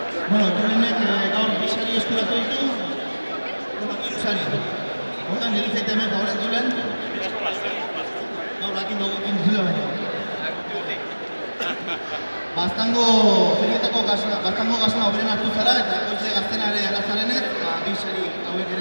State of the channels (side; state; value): both; inverted; correlation -1.00